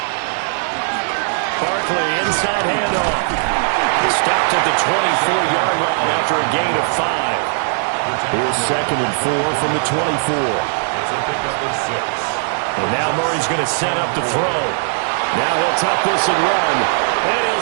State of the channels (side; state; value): left; silent; digital silence